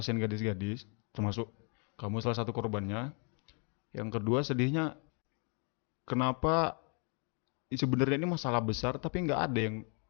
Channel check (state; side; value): quieter; right; 38.2 dB